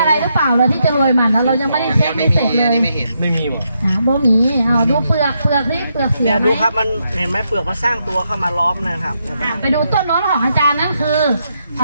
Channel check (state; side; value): inverted; both; correlation -0.80